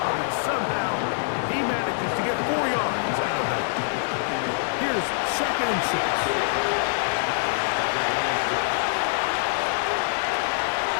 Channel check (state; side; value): silent; right; digital silence